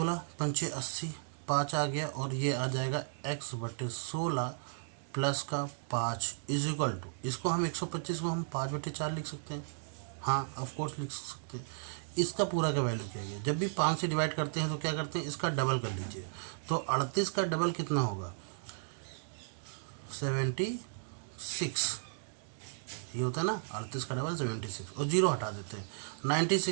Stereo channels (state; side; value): silent; left; digital silence